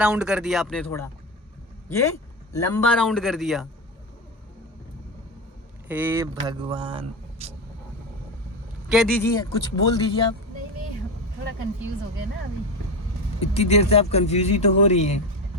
कर दिया आपने, थोड़ा ये लंबा राउंड कर दिया। हे भगवान, कह दीजिए, कुछ बोल दीजिए आप। नहीं, थोड़ा कंफ्यूज हो गया ना अभी। इतनी देर से आप कंफ्यूज ही तो हो रही हैं।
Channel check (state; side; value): normal; both; correlation 0.18